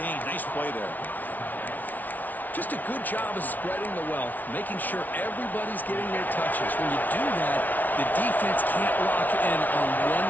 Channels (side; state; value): right; late; 0.080 ms